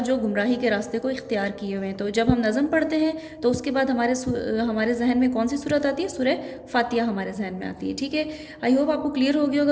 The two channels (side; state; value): both; identical; correlation 1.00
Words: گمراہی کے راستے کو اختیار کیے ہوئے ہیں. تو جب ہم نظم پڑھتے ہیں تو اس کے بعد ہمارے ذہن میں کون سی صورت آتی ہے؟ سورہ فاتحہ ہمارے ذہن میں آتی ہے. ٹھیک ہے، آئی ہوپ آپ کو کلیئر ہو گیا